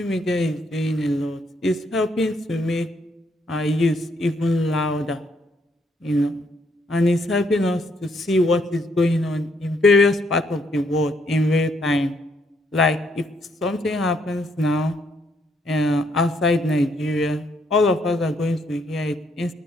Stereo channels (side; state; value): both; normal; correlation 0.72